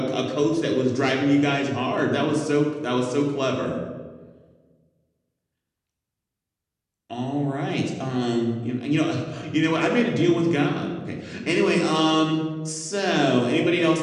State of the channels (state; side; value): identical; both; correlation 1.00